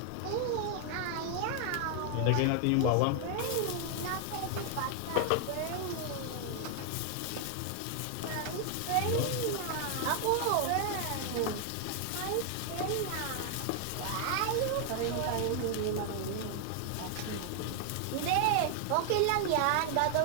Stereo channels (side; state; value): both; different; correlation 0.00